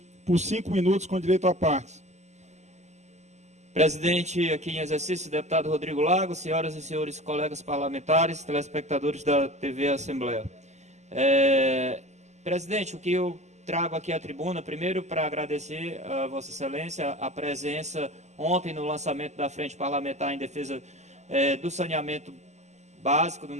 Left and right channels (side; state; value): left; late; 0.33 ms